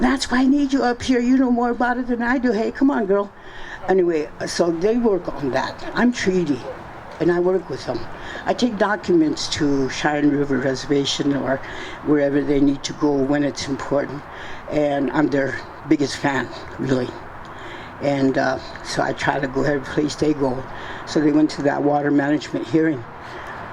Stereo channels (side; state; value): both; identical; correlation 1.00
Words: that's why I need you up here. You know more about it than I do. Hey, come on, girl. Anyway, so they work on that. I'm treaty, and I work with them. I take documents to Cheyenne River Reservation or wherever they need to go when it's important, and I'm their biggest fan, really. And so I try to go every place they go. So they went to that water management hearing.